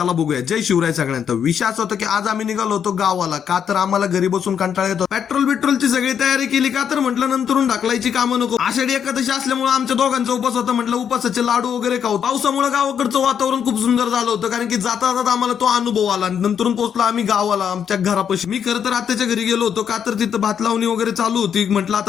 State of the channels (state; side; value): quieter; right; 8.1 dB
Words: बघूया. जय शिवराय सगळ्यांना. विषय असा होता की आज आम्ही निघालो होतो गावाला. का तर आम्हाला घरी बसून कंटाळा येतो. पेट्रोलची सगळी तयारी केली. का तर म्हटलं नंतरून ढकलायची कामं नको. आषाढी एकादशी असल्यामुळे आमच्या दोघांचा उपास होता. म्हटलं उपासाचे लाडू वगैरे खाऊ. पावसामुळे गावाकडचं वातावरण खूप सुंदर झालं होतं. कारण की जाता जाता आम्हाला तो अनुभव आला. नंतरून पोहोचलो आम्ही गावाला आमच्या घरापाशी. मी खरं तर आत्याच्या घरी गेलो होतो. का तर तिथं भात लावणी वगैरे चालू होती. म्हटलं